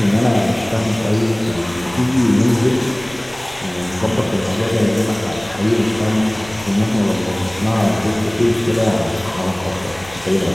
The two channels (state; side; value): noise; left; rumble, 22 dB below the sound